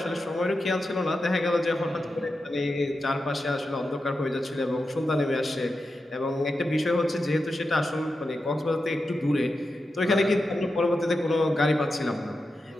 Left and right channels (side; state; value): both; normal; correlation 0.90